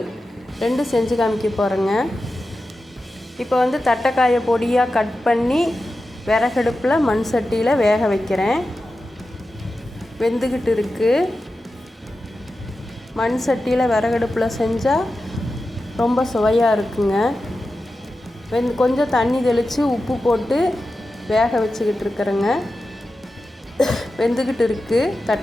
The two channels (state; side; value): normal; both; correlation 0.92